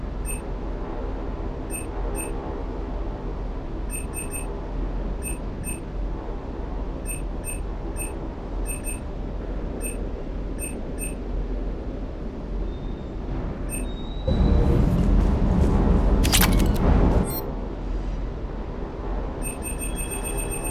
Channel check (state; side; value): identical; both; correlation 1.00